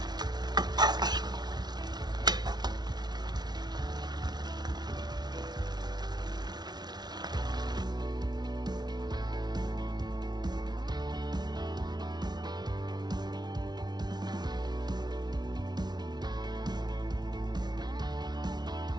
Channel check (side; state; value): left; late; 0.20 ms